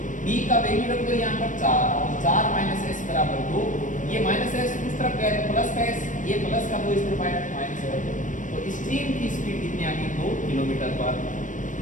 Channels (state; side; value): late; right; 0.37 ms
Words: b का वैल्यू रख दो यहाँ पर 4, तो 4 - s बराबर 2। ये -s उस तरफ गया तो प्लस का s, ये प्लस का 2 इस तरफ आया तो माइनस का 2। तो स्ट्रीम की स्पीड कितनी आ गई? 2 किलोमीटर पर